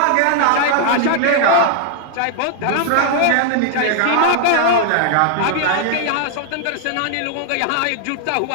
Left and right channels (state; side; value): different; both; correlation -0.01